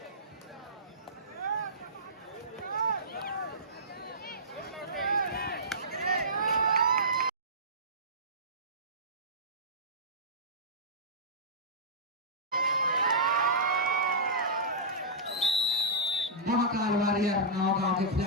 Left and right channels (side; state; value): both; normal; correlation -0.17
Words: महाकाल वॉरियर नौगांव के